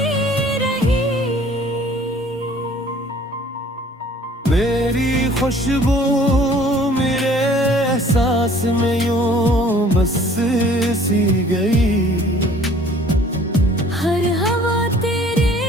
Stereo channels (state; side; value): normal; both; correlation 0.53